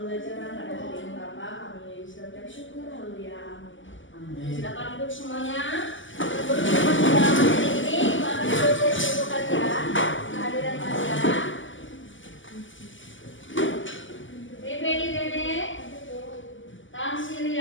Pembelajaran pada hari ini Bapak, kami sudah bersyukur, haleluya, amin. Silakan duduk semuanya. Berhubungan dalam hari ini, Bapak proses untuk kalian, kehadiran kalian. Baby Dede,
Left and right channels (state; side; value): late; right; 0.56 ms